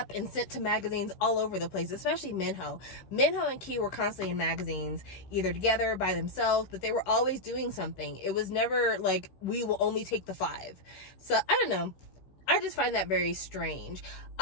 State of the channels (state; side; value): late; right; 15 ms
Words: and sent to magazines all over the place, especially Minho. Minho and Key were constantly in magazines, either together, by themselves, but they were always doing something. It was never like, we will only take the 5. So, I don't know. I just find that very strange.